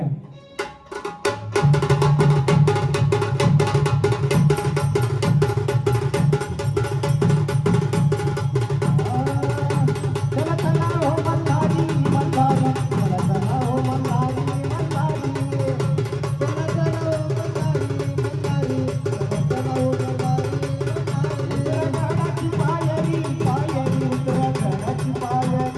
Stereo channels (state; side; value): identical; both; correlation 1.00